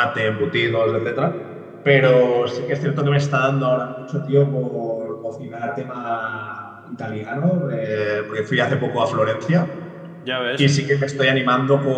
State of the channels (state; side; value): identical; both; correlation 1.00